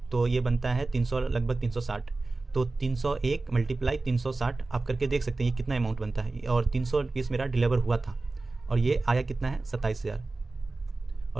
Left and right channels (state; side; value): quieter; left; 3.4 dB